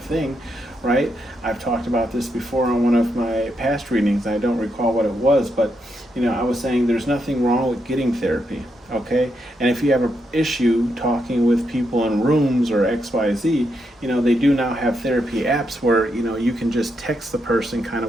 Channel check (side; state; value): both; normal; correlation 0.81